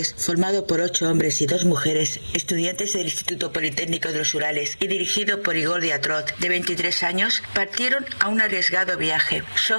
formado por 8 hombres y 2 mujeres, estudiantes del Instituto Politécnico de los Urales y dirigido por Igor Diatrov, de 23 años, partieron a un arriesgado viaje. Su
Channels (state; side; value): inverted; both; correlation -1.00